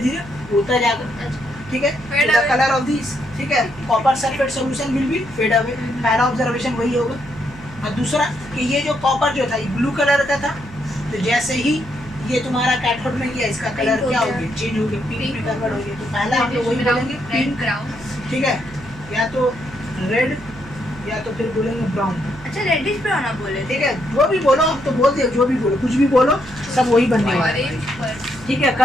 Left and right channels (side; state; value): right; noise; hum, 18 dB below the sound